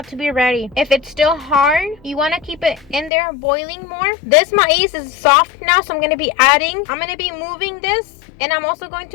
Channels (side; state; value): right; drops out; at 3.1 s